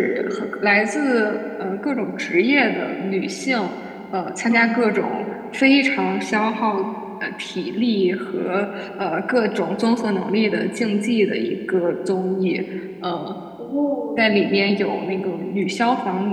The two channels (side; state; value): both; identical; correlation 1.00